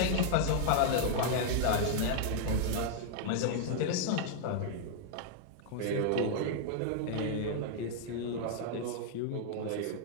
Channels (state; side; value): different; both; correlation -0.01